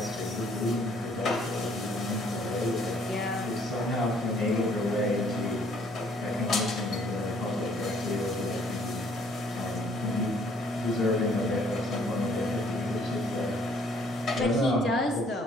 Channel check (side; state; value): both; normal; correlation 0.62